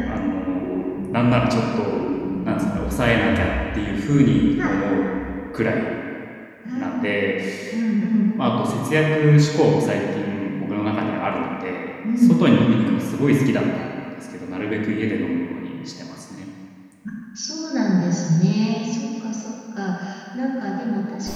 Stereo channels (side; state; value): both; identical; correlation 1.00